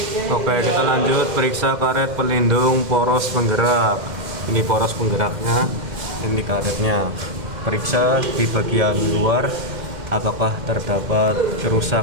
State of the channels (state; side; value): late; left; 2.1 ms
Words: Oke, kita lanjut periksa karet pelindung poros penggerak. Ini poros penggeraknya, ini karetnya. Periksa di bagian luar apakah terdapat